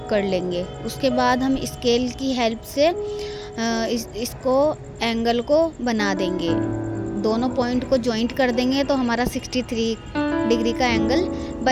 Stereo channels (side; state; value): both; identical; correlation 1.00